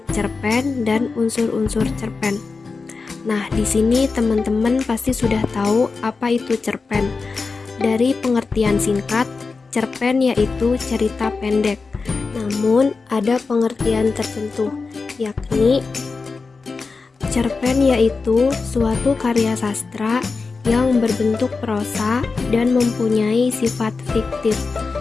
cerpen, dan unsur-unsur cerpen. Nah, di sini teman-teman pasti sudah tahu apa itu cerpen. Dari pengertian singkat, cerpen yaitu cerita pendek. Namun, ada pengertian tertentu, yakni cerpen yaitu suatu karya sastra yang berbentuk prosa dan mempunyai sifat fiktif,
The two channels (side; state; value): right; quieter; 4.4 dB